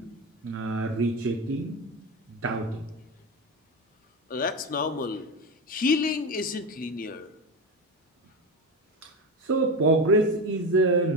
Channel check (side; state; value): both; normal; correlation 0.19